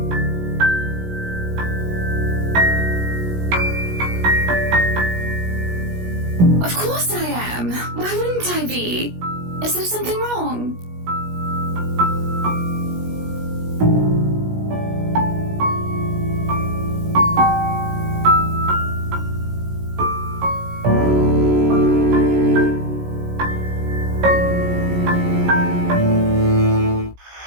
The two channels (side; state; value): left; late; 17 ms